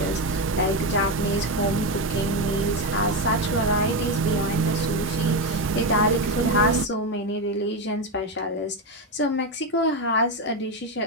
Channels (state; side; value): normal; both; correlation 0.11